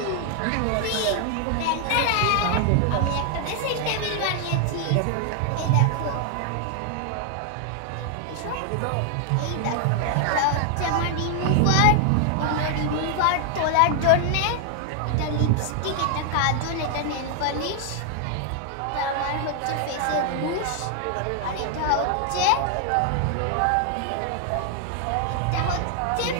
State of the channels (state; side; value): different; both; correlation 0.00